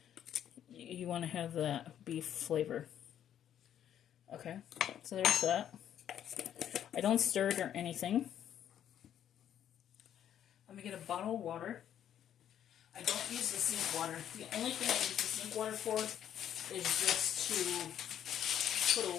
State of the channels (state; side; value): quieter; right; 10.2 dB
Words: you want to have that beef flavor. Okay, so there's that. I don't stir it or anything. I'm going to get a bottle of water. I don't use the sink water. The only thing I use the sink water for is just to put a